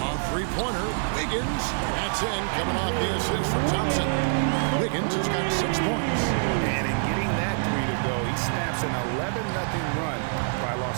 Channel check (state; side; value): silent; left; 61 dB below the other